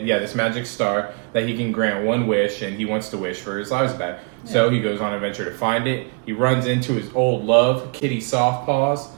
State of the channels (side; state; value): left; quieter; 37.0 dB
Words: Yeah, this magic star that he can grant one wish, and he wants to wish for his lives back. So he goes on an adventure to find it. He runs into his old love, Kitty Softpaws,